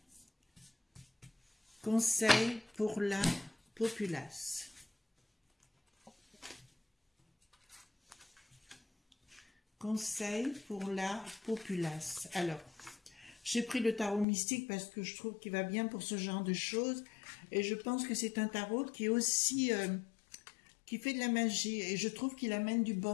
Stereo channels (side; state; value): right; drops out; at 14.2 s